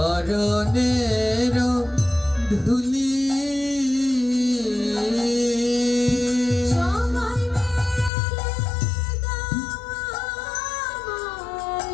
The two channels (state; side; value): drops out; right; at 8.1 s